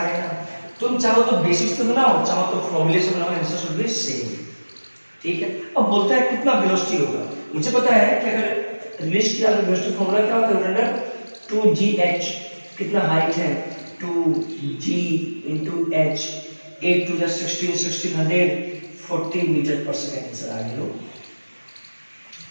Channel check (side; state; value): both; inverted; correlation -1.00